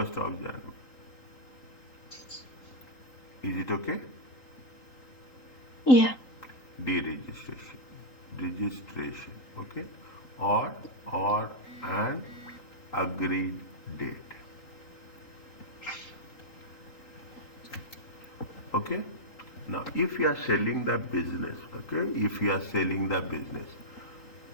of January. Is it okay? Yeah. Deregistration. Registration. Okay. Or an agreed date. Okay. Now, if you are selling the business, okay, if you are selling the business,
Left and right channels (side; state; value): right; late; 3.8 ms